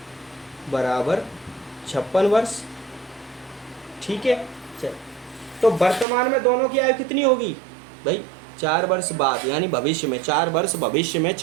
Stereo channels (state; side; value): drops out; left; at 6.1 s